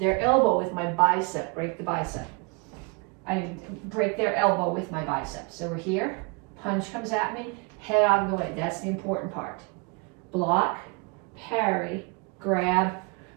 elbow with my bicep, break the bicep. I break their elbow with my bicep. So we're here, punch comes at me, head out of the way. That's the important part. Block, parry, grab,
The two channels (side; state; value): left; quieter; 31.7 dB